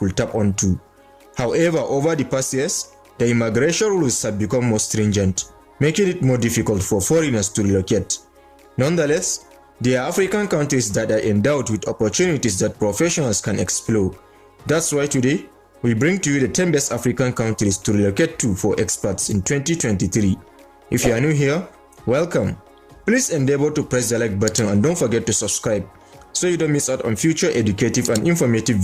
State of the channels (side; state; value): both; identical; correlation 1.00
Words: tap onto. However, over the past years, the immigration rules have become more stringent, making it more difficult for foreigners to relocate. Nonetheless, there are African countries that are endowed with opportunities that professionals can explore. That's why today, we bring to you the 10 best African countries to relocate to for expats in 2023. If you are new here, welcome. Please endeavor to press the like button and don't forget to subscribe so you don't miss out on future educative and informative